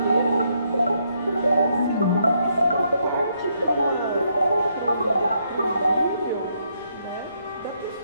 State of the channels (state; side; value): inverted; both; correlation -0.75